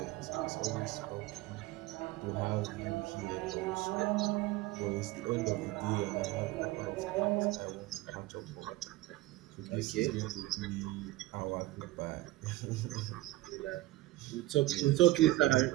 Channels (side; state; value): left; quieter; 17.6 dB